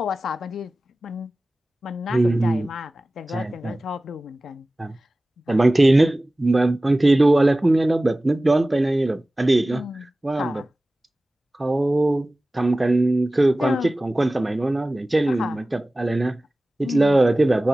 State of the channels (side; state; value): both; normal; correlation 0.97